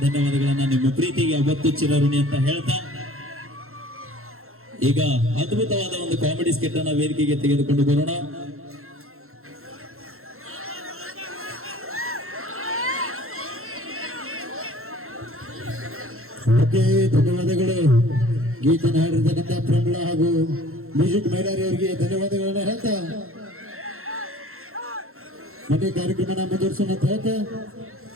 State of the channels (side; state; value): left; late; 0.62 ms